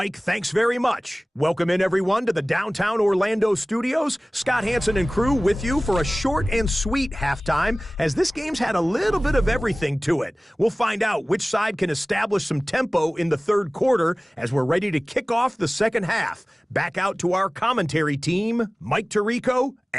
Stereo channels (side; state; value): both; normal; correlation 0.98